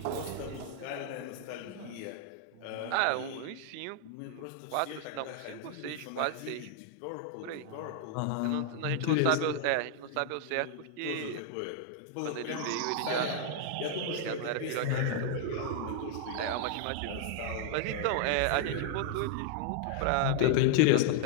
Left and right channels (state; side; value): different; both; correlation 0.00